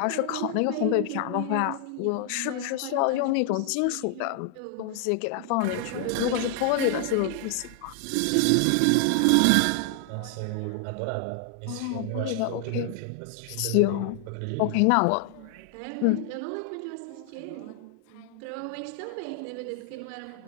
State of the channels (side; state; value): both; different; correlation 0.00